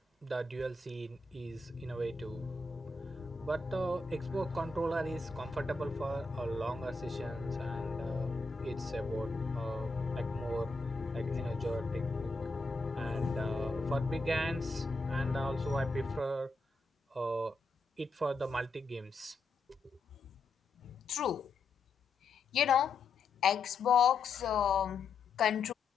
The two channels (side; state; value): right; quieter; 3.6 dB